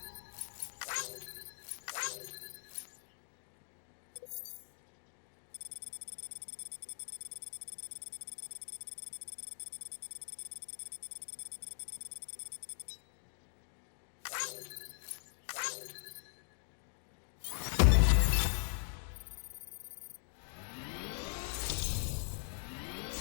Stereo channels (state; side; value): silent; right; digital silence